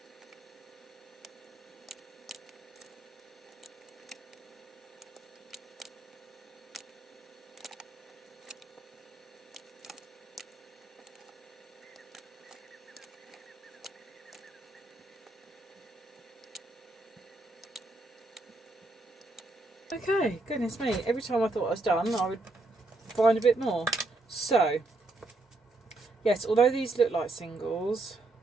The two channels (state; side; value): quieter; left; 3.0 dB